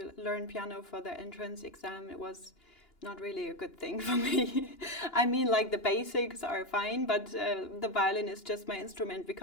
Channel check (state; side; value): late; right; 2.9 ms